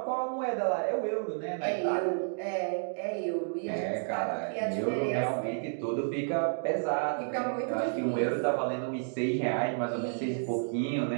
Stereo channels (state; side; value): silent; left; digital silence